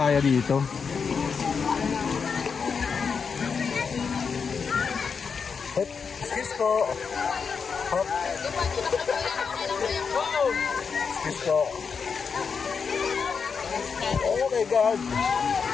dito. Hop. Excuse po. Hop. Excuse po. Oh my God.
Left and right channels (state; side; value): quieter; right; 5.8 dB